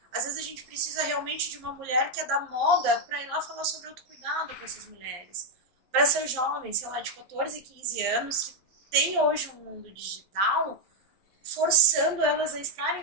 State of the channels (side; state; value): left; late; 11 ms